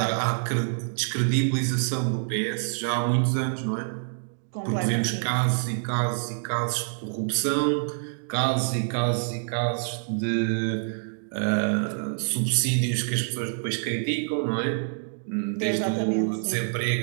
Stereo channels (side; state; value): left; silent; digital silence